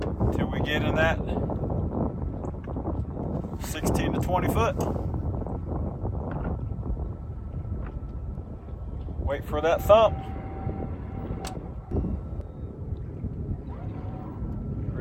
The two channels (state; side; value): identical; both; correlation 1.00